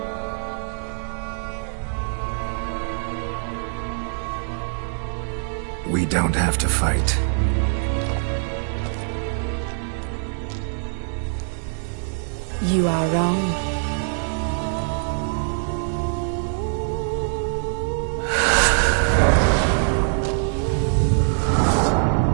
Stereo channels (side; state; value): left; silent; digital silence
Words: We don't have to fight. You are wrong.